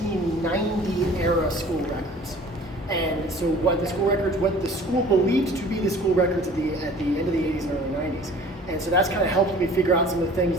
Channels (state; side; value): normal; both; correlation 0.48